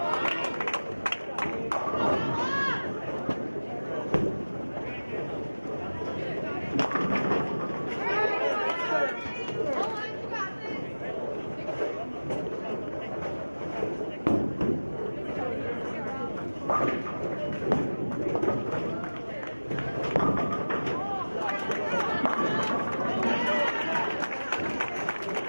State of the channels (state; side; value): inverted; both; correlation -1.00